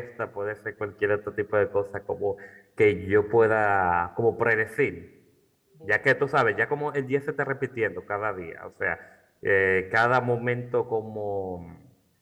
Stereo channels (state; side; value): identical; both; correlation 1.00